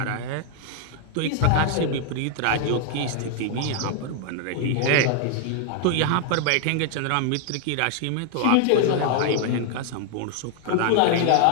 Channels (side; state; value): both; different; correlation 0.00